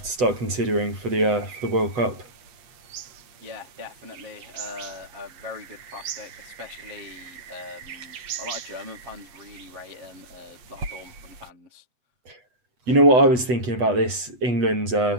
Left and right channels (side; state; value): left; late; 8.1 ms